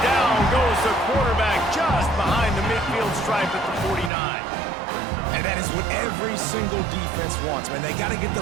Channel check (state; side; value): drops out; left; at 4.1 s